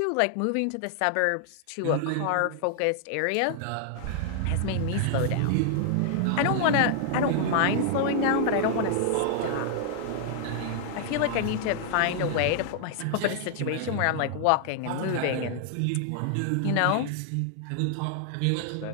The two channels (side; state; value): both; different; correlation 0.00